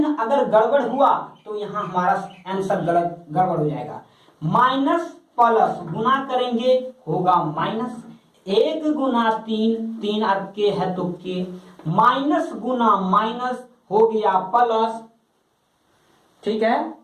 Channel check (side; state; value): both; identical; correlation 1.00